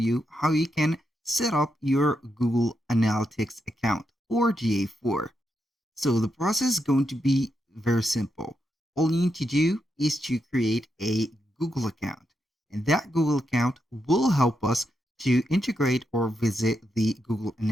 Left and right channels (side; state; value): both; normal; correlation 0.84